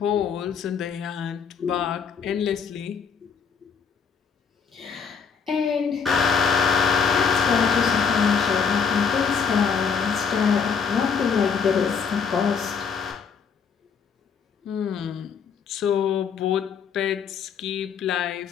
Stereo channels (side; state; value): right; quieter; 6.3 dB